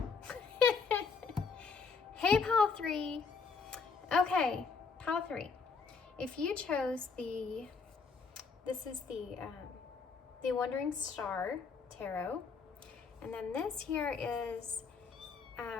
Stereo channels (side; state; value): right; quieter; 5.1 dB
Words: Hey, Pile 3. Okay, Pile 3. If you chose this is the Wandering Star Tarot, and then this here is